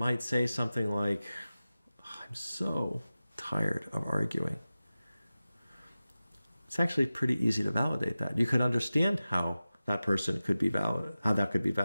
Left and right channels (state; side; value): inverted; both; correlation -0.95